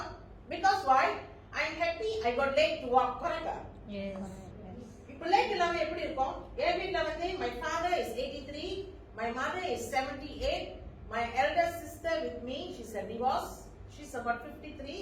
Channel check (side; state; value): both; identical; correlation 1.00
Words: because why? I am happy I got late to walk. Correct? Yes. இப்போ late இல்லாம எப்படி இருக்கும்? என் வீட்ல வந்து my father is 83, my mother is 78, my elder sister with me, she's a divorce. She's about